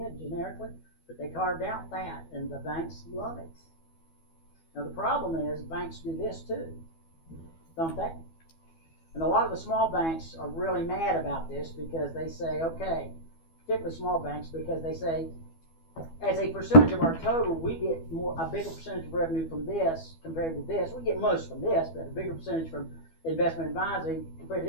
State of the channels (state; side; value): late; right; 12 ms